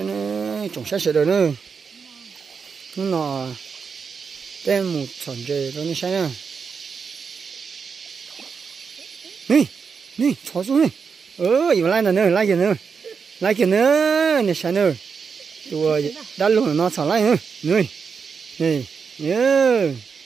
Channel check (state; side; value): quieter; left; 5.8 dB